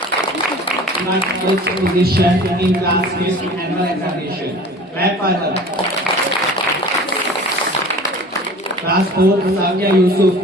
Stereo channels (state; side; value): normal; both; correlation 0.42